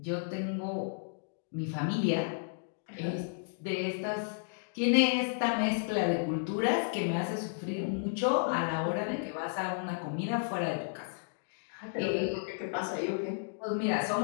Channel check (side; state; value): right; silent; digital silence